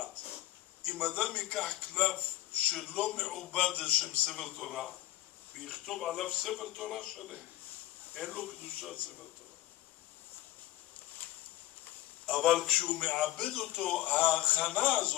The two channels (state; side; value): quieter; right; 15.5 dB